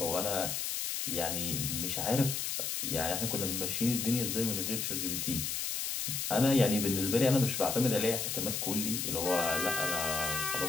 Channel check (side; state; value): left; noise; hiss, 1 dB below the sound